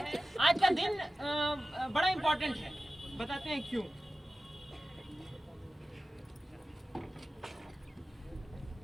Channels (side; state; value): both; normal; correlation 0.95